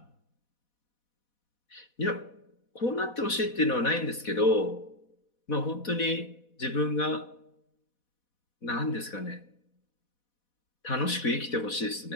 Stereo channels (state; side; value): late; right; 4.1 ms